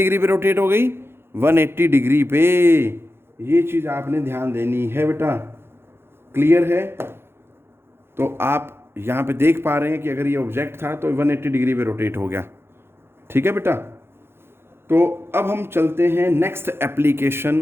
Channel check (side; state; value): left; late; 0.11 ms